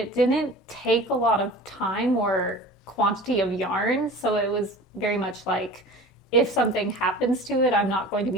didn't take a lot of time or quantity of yarn, so it was very much like, if something happens to it, I'm not going to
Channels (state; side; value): normal; both; correlation 0.39